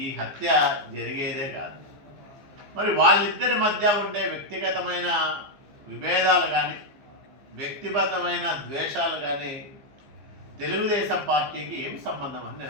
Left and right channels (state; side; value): late; left; 15 ms